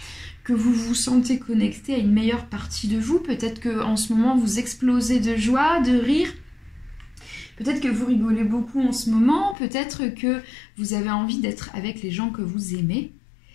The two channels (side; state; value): right; drops out; at 9.6 s